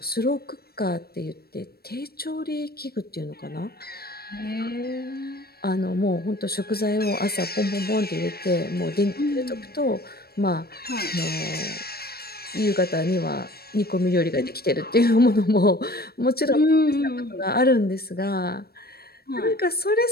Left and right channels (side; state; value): right; late; 0.45 ms